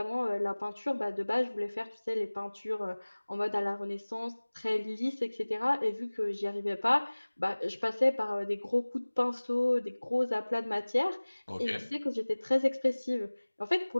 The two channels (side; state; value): both; inverted; correlation -1.00